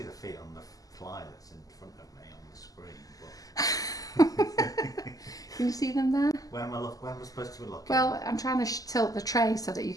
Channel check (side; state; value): right; late; 0.17 ms